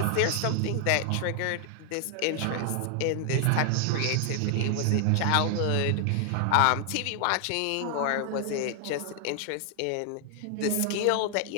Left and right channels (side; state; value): both; different; correlation 0.00